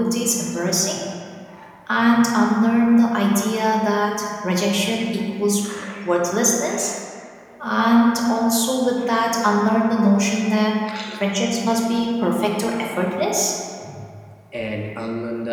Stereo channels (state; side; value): identical; both; correlation 1.00